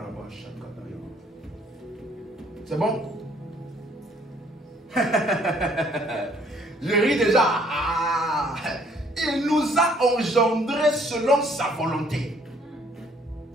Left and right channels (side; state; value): both; normal; correlation 0.62